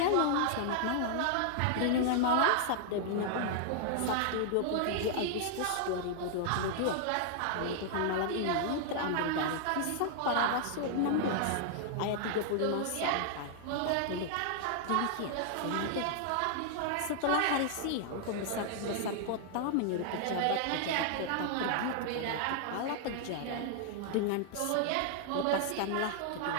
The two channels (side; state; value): both; different; correlation -0.01